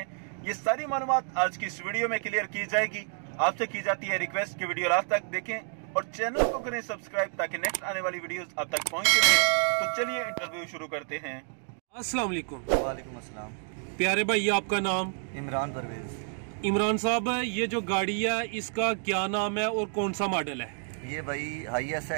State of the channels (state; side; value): silent; left; 58 dB below the other